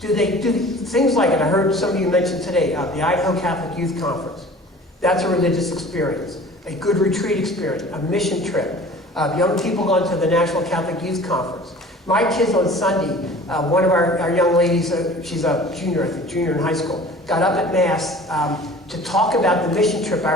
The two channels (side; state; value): both; normal; correlation 0.45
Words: Do they do things like, and I heard some of you mention today, the Idaho Catholic Youth Conference. That's a religious experience. A good retreat experience, a mission trip. Young people going to the National Catholic Youth Conference. My kids on Sunday, one of our young ladies, she's a junior, I think, junior in high school, got up at Mass to talk about the mission trip